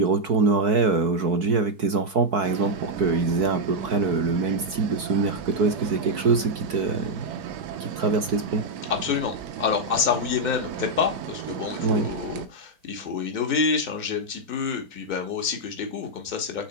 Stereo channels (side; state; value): left; late; 4.6 ms